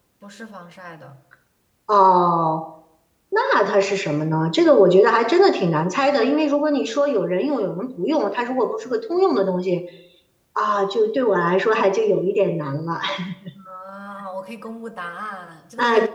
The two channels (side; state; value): both; identical; correlation 1.00